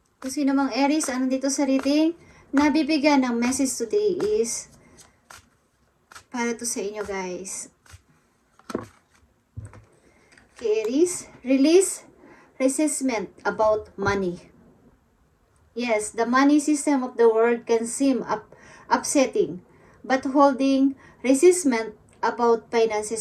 Kung sino mang Aries, ano dito sa reading, nabibigyan ng message today is para to sa inyo guys. Okay, Aries, release resentment about money. Yes, the money system of the world can seem upsetting, but holding resentment about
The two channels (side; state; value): both; identical; correlation 1.00